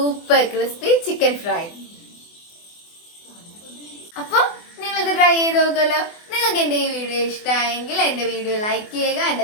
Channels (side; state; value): right; late; 24 ms